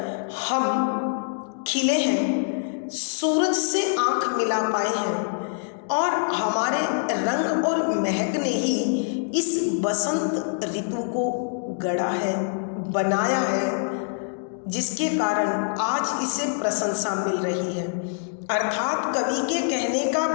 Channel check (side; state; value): right; silent; digital silence